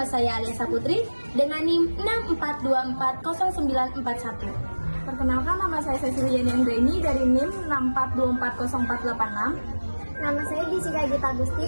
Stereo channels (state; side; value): inverted; both; correlation -1.00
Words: saya Aliasa Putri dengan NIM 64240941. Perkenalkan, nama saya Ceciliani Anggreni dari NIM 64240486. Nama saya Jessica Gita